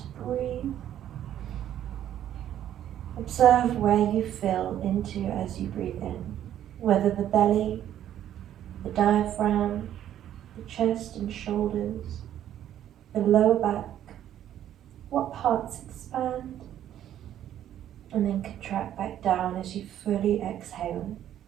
breathe. Observe where you fill into as you breathe in, whether the belly, the diaphragm, the chest and shoulders, the lower back, what parts expand, and then contract back down as you fully exhale.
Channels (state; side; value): quieter; left; 11.2 dB